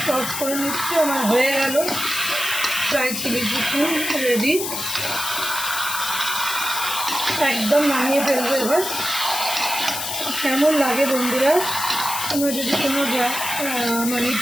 টস করে নিচ্ছি। আমার হয়ে গেল ড্রাই চিলি চিকেন রেডি। একদম নামিয়ে ফেলবো এবার। কেমন লাগে বন্ধুরা? তোমরা যদি কোনো মানে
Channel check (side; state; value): left; noise; hiss, 4 dB below the sound